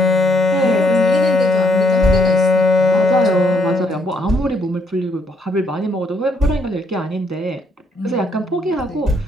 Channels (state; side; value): normal; both; correlation 0.71